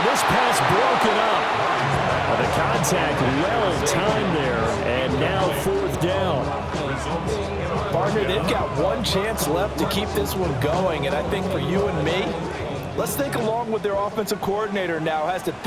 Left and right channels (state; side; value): identical; both; correlation 1.00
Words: this pass broken up. The contact well timed there. And now fourth down. Partner, they've got one chance left to keep this one going. And I think for you and me, let's think along with their offensive coordinator now. Has to